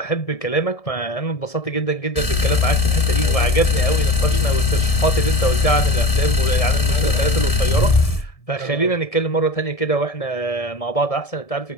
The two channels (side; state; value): right; late; 1.7 ms